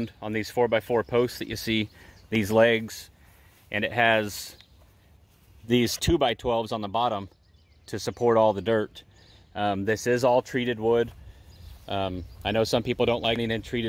on these 4x4 posts that you see, these legs, and it has these 2x12s on the bottom to support all the dirt. This is all treated wood. I know some people don't like anything in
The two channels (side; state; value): both; identical; correlation 1.00